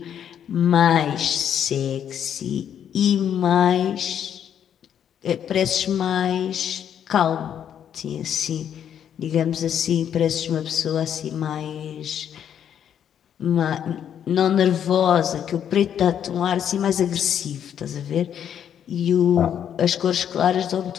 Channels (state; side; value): quieter; right; 9.2 dB